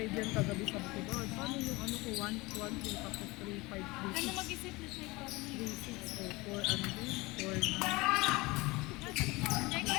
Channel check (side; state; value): right; quieter; 22.8 dB